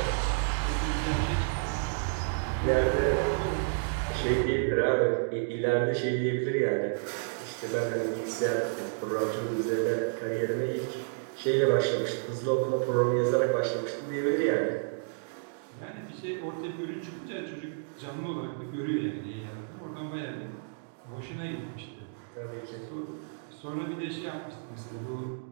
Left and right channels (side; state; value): left; silent; digital silence